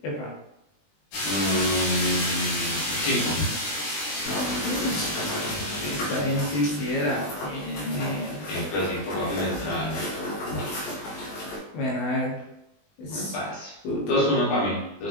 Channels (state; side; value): late; right; 20 ms